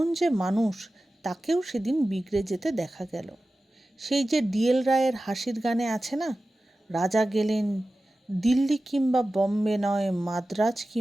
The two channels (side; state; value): both; normal; correlation 0.95